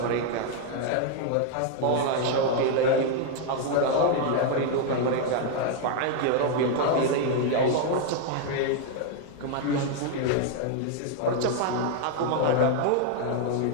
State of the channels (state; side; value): different; both; correlation 0.00